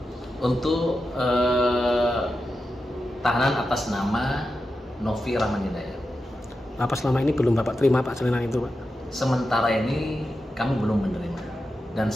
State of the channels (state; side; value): normal; both; correlation 0.90